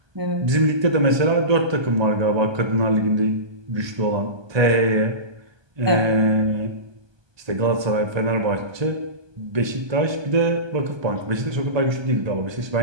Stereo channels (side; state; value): left; late; 1.2 ms